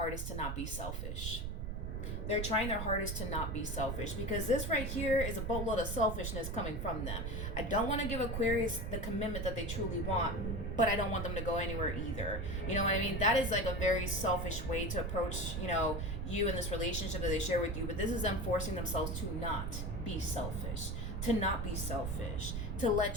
to not be selfish. They're trying their hardest to not be selfish, because this right here is a boatload of selfishness coming from them. I don't want to give Aquarius the commitment that they truly want, but I don't want them to go anywhere either. You know what I mean? That is like a very selfish way to approach, you know, you and this relationship that they share with you. But this is them forcing themselves to not be selfish, to not be selfish, to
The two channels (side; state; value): right; noise; rumble, 3 dB below the sound